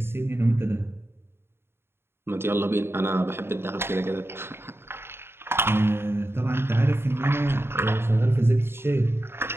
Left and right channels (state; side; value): late; left; 0.11 ms